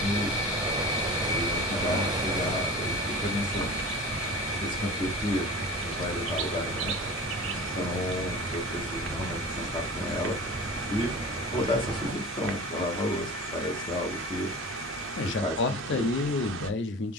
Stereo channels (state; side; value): normal; both; correlation 0.36